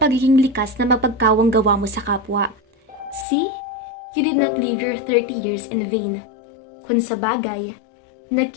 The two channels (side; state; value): right; drops out; at 3.2 s